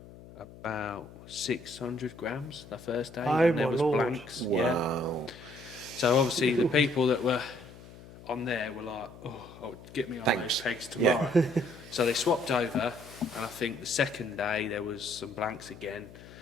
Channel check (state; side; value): noise; left; hum, 18 dB below the sound